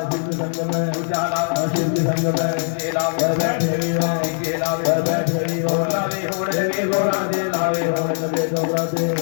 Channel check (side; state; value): right; silent; digital silence